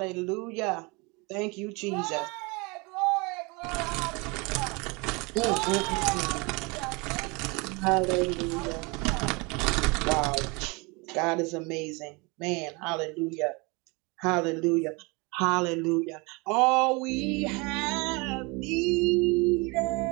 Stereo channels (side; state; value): left; quieter; 27.7 dB